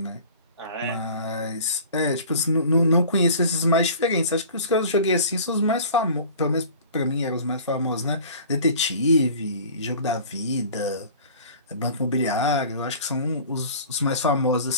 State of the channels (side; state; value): both; inverted; correlation -0.43